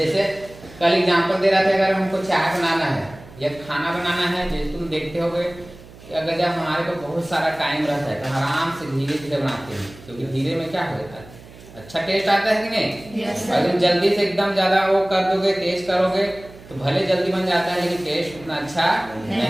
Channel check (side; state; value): right; noise; hum, 20 dB below the sound